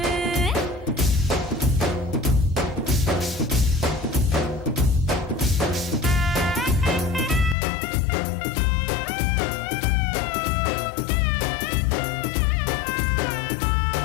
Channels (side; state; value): right; drops out; at 7.6 s